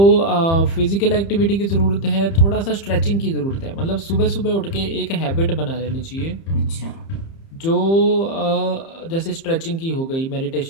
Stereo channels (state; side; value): late; right; 30 ms